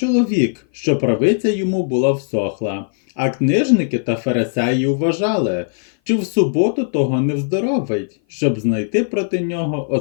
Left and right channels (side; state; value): right; silent; 57 dB below the other